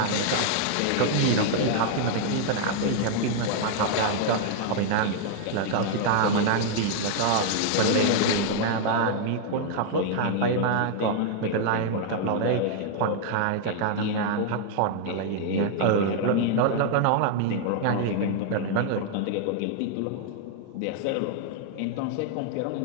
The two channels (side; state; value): both; different; correlation 0.00